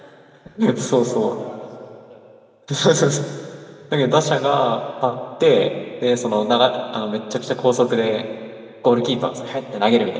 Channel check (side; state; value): both; identical; correlation 1.00